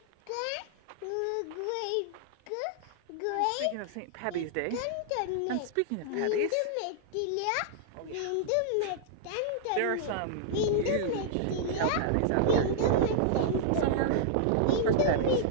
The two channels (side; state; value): both; different; correlation -0.01